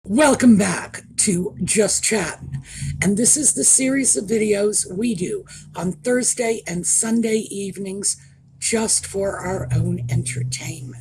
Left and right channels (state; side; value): identical; both; correlation 1.00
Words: Welcome back to Just Chattin, and this is the series of videos we do on Thursday and Sunday evenings just for our own